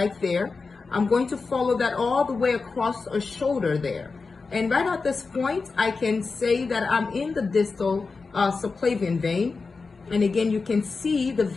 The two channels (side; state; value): right; quieter; 4.3 dB